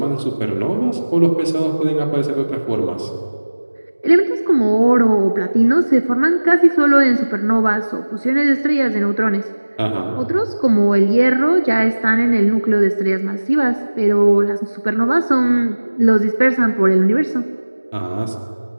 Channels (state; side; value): inverted; both; correlation -1.00